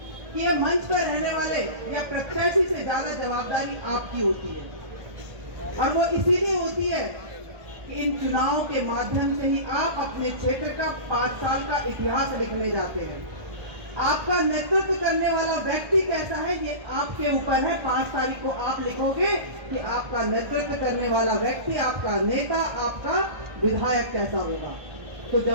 कि ये मंच पर रहने वाले या प्रत्याशी से ज्यादा जवाबदारी आपकी होती है। और वो इसीलिए होती है कि इन चुनाव के माध्यम से ही आप अपने क्षेत्र का 5 साल का इतिहास लिखने जाते हैं। आपका नेतृत्व करने वाला व्यक्ति कैसा है ये आपके ऊपर है। 5 तारीख को आप लिखोगे कि आपका नेतृत्व करने वाला व्यक्ति, आपका नेता, आपका विधायक कैसा होगा। तो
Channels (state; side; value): late; left; 1.4 ms